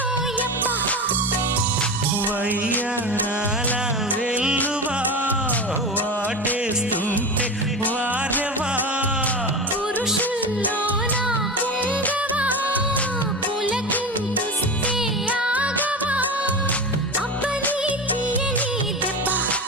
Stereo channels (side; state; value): both; normal; correlation 0.25